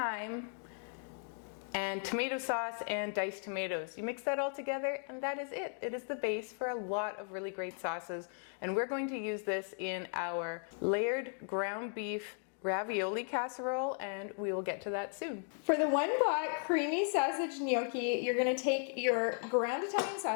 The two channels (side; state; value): right; silent; 54 dB below the other